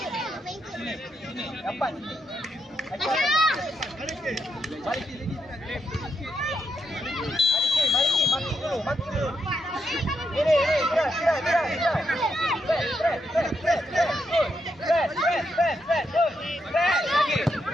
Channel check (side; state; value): both; normal; correlation 0.81